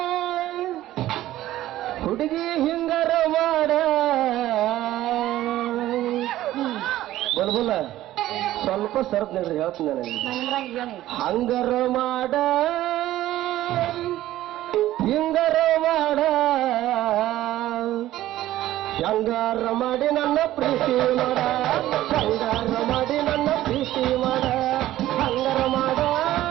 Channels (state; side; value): quieter; left; 14.5 dB